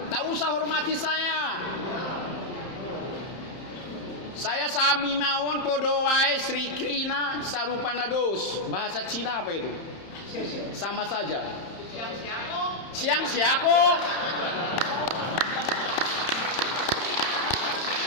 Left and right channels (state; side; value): late; right; 31 ms